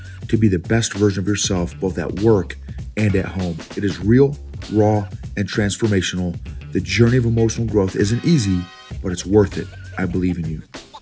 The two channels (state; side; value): identical; both; correlation 1.00